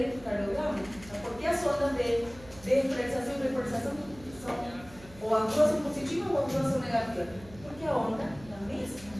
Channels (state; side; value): noise; right; hum, 20 dB below the sound